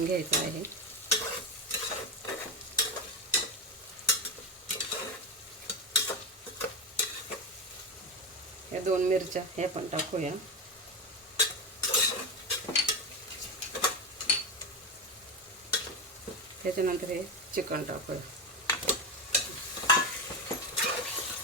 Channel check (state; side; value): normal; both; correlation 0.15